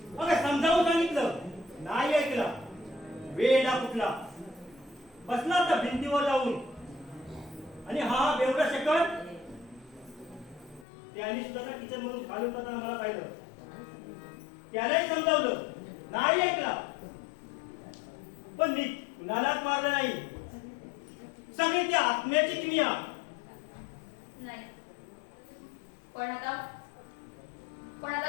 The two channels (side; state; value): right; drops out; at 10.9 s